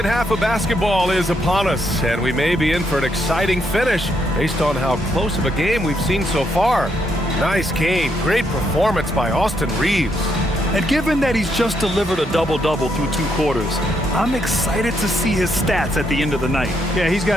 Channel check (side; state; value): both; normal; correlation 0.76